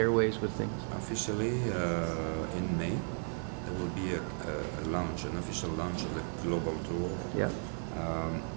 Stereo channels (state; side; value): silent; left; 55 dB below the other